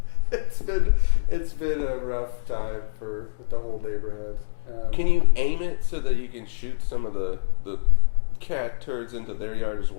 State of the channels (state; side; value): silent; right; 62 dB below the other